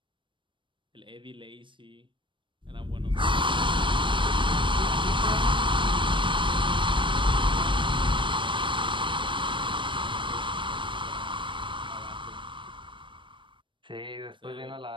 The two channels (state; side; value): late; left; 0.24 ms